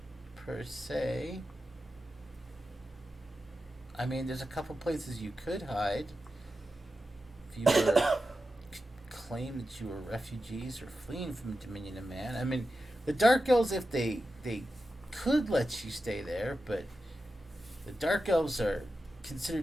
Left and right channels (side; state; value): both; normal; correlation 0.91